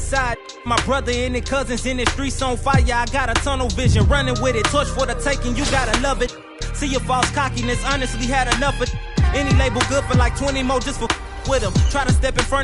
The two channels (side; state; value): both; identical; correlation 1.00